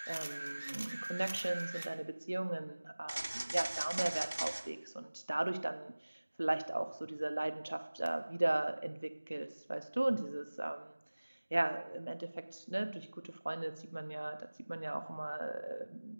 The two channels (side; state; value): both; inverted; correlation -1.00